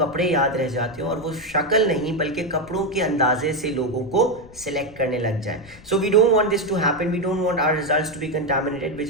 याद रह जाते हैं और वो शक्ल नहीं बल्कि कपड़ों के अंदाजे से लोगों को सिलेक्ट करने लग जाए. So we don't want this to happen. We don't want our results to be contaminated, which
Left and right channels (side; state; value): left; noise; rumble, 21 dB below the sound